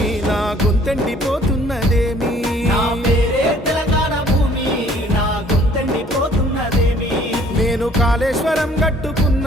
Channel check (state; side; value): normal; both; correlation 0.57